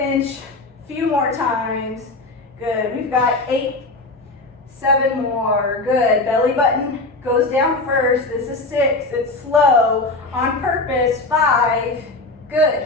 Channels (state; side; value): quieter; right; 3.1 dB